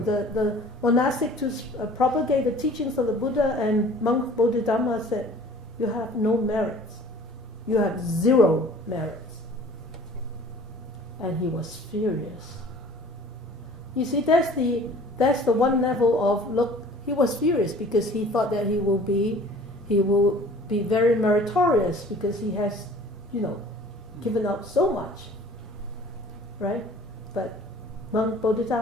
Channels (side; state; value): both; normal; correlation 0.48